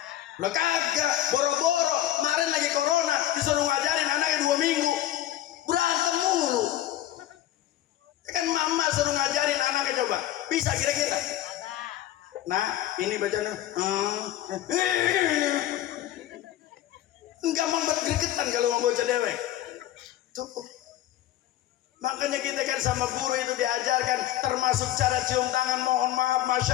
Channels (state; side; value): quieter; right; 13.5 dB